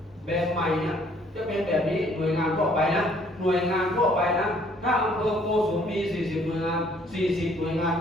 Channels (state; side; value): normal; both; correlation 0.62